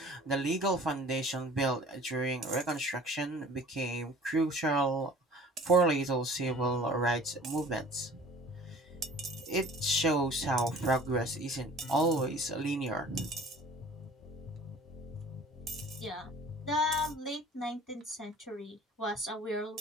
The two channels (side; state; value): both; normal; correlation 0.47